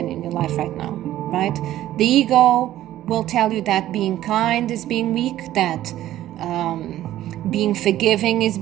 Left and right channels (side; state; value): left; quieter; 13.5 dB